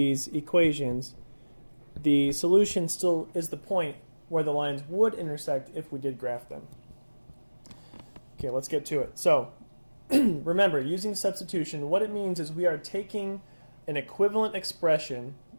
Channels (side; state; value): both; inverted; correlation -1.00